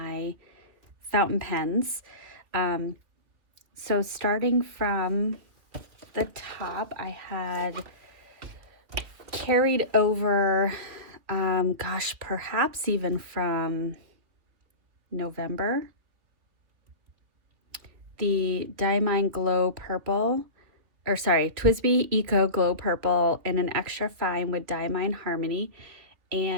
fountain pens. Um, so starting from the top, I had carried over, perhaps even from November, the Diamine Glow Purple. TWSBI Eco Glow Purple in an extra fine with Diamine Harmony.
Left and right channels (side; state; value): left; late; 3.1 ms